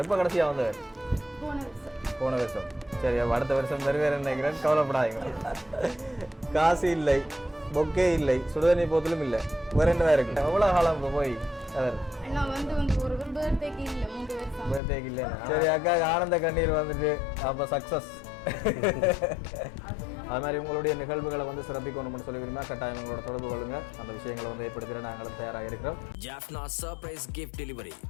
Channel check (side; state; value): right; drops out; at 14.8 s